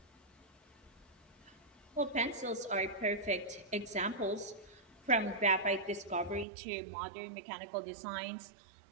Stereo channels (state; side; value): drops out; left; at 6.5 s